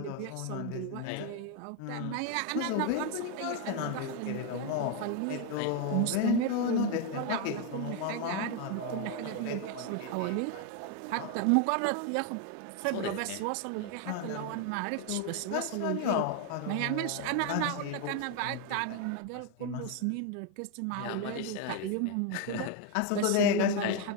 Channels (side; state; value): both; different; correlation 0.01